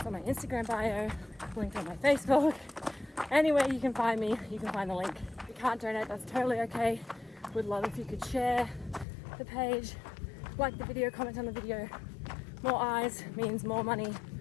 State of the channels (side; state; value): right; drops out; at 9.1 s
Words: on my Instagram bio, linked on my Facebook. Anywhere you can find me, you can find the link. If you can't donate, that's totally okay. Would love if you could share the page, like the video, comment on the video. More eyes means more money